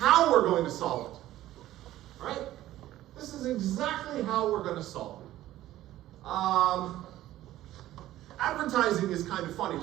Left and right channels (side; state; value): left; quieter; 14.4 dB